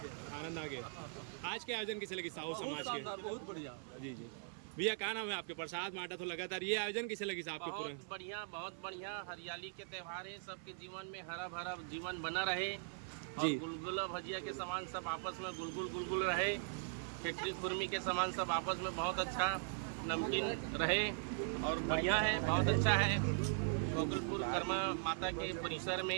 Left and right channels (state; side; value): silent; left; 51 dB below the other